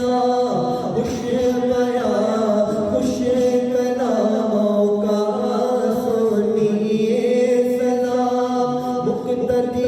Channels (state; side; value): identical; both; correlation 1.00